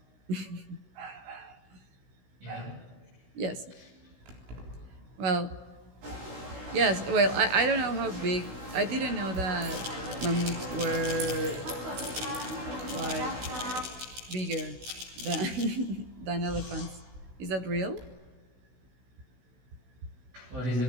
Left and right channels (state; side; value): late; left; 16 ms